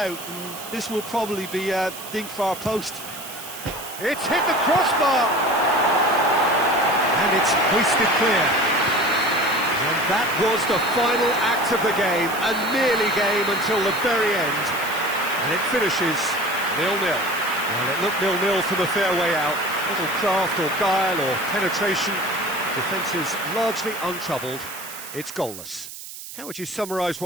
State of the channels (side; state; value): right; noise; hiss, 12 dB below the sound